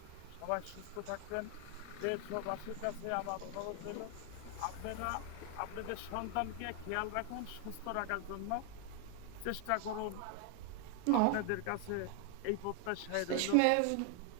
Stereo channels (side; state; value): both; different; correlation 0.00